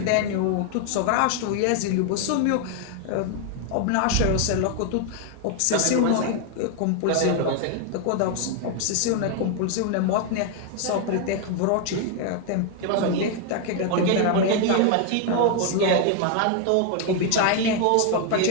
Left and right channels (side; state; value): both; different; correlation 0.01